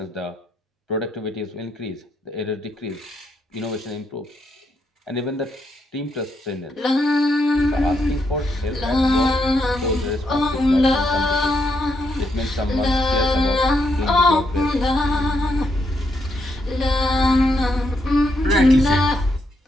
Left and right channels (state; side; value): normal; both; correlation 0.78